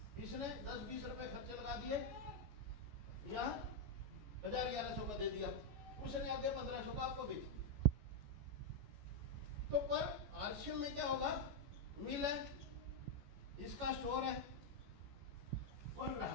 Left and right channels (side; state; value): left; late; 14 ms